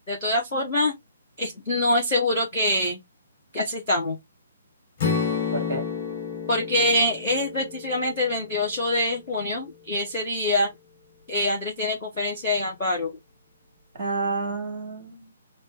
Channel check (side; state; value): both; inverted; correlation -0.51